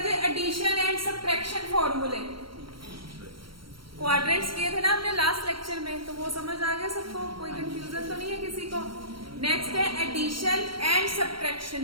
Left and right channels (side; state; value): left; late; 0.74 ms